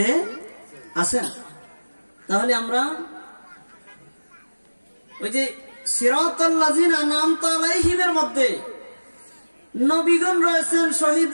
আছেন। তাহলে আমরা ওই যে সিরাতাল লাযিনা আনআমতা আলাইহিমের মধ্যে নবীগণ রয়েছেন,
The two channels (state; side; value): inverted; both; correlation -1.00